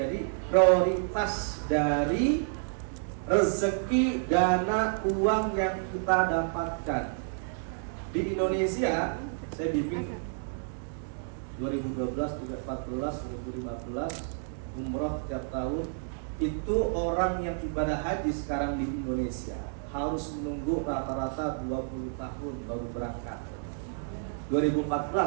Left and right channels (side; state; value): left; silent; digital silence